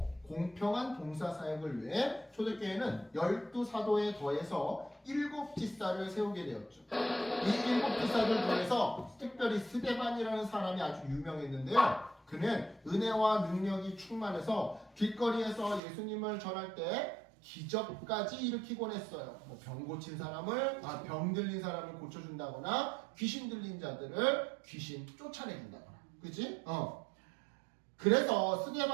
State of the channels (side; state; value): left; drops out; at 15.8 s